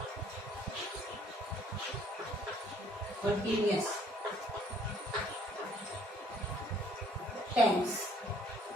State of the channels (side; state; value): both; normal; correlation 0.61